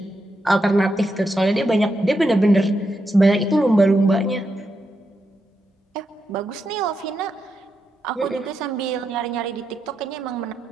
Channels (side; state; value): both; normal; correlation 0.84